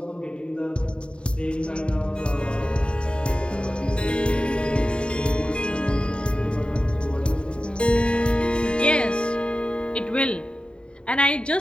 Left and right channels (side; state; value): right; late; 0.053 ms